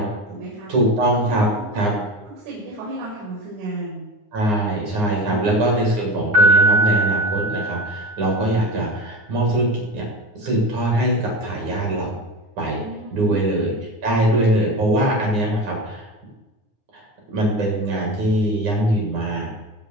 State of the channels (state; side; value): late; left; 9.6 ms